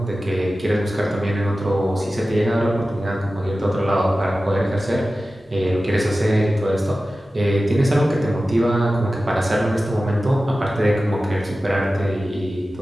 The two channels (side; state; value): both; normal; correlation 0.95